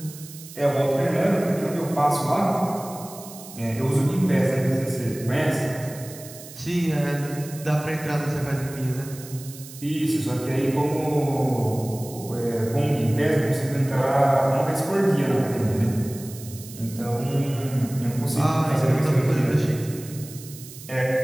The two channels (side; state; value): right; noise; hiss, 16 dB below the sound